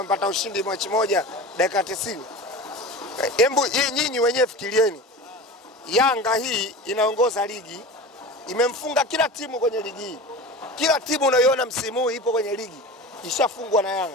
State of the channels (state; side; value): normal; both; correlation 0.31